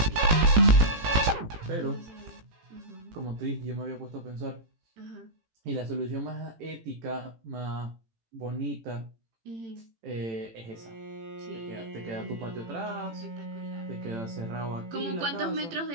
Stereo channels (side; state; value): left; late; 18 ms